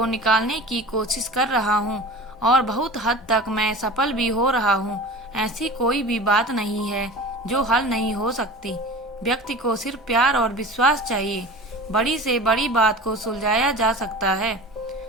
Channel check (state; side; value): normal; both; correlation 0.36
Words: निकालने की कोशिश कर रहा हूँ और बहुत हद तक मैं सफल भी हो रहा हूँ। ऐसी कोई भी बात नहीं है जो हल नहीं हो सकती। व्यक्ति को सिर्फ प्यार और विश्वास चाहिए। बड़ी से बड़ी बात को सुलझाया जा सकता है।